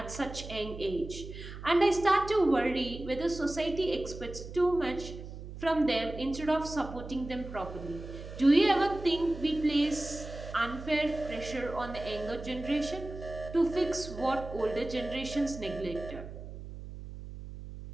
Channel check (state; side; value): noise; right; hum, 11 dB below the sound